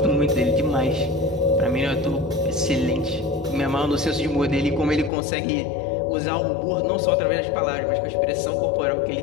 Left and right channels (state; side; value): drops out; right; at 5.1 s